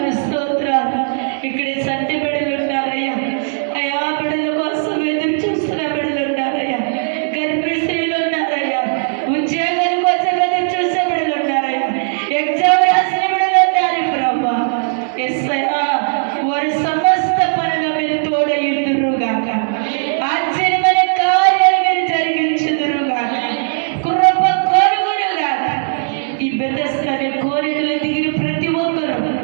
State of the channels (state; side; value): silent; left; digital silence